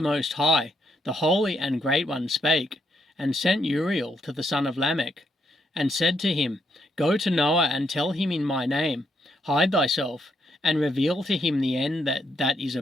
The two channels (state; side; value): normal; both; correlation 0.76